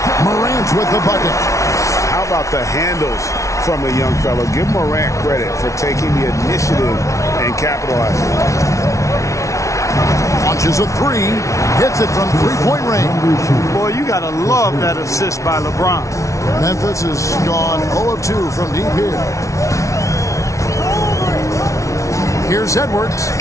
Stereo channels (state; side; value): late; right; 0.15 ms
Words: Morant with the bucket. How about the handles from the young fellow? Give Morant credit for taking the initiative and capitalizing. Launches a three. Hits it from three-point range. Boy, you got to love that assist by LeBron. Memphis has gone 0 of 2 from deep here. Here's Edwards.